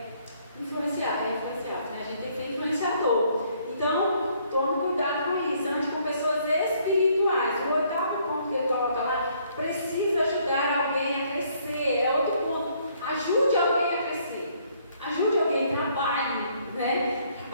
influenciadas, né? A gente tem que ser influenciador. Então, tome cuidado com isso, ande com pessoas espirituais. O oitavo ponto que ele coloca lá, precisa ajudar alguém a crescer. É outro ponto. Ajude alguém a crescer. Ajude alguém, trabalhe, né?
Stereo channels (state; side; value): inverted; both; correlation -0.66